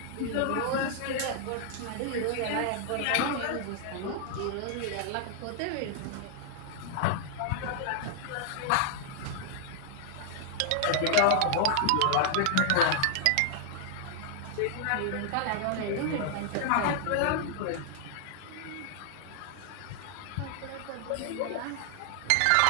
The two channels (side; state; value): both; different; correlation -0.01